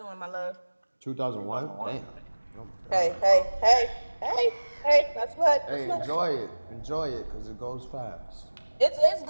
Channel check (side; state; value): both; inverted; correlation -1.00